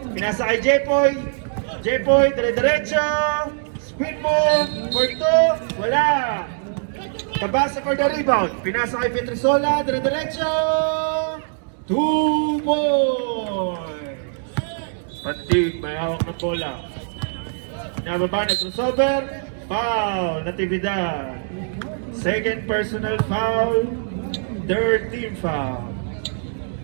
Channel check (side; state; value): left; silent; digital silence